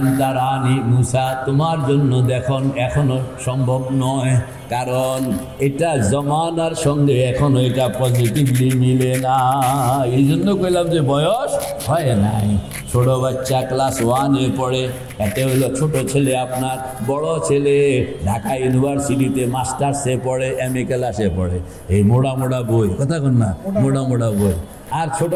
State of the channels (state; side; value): identical; both; correlation 1.00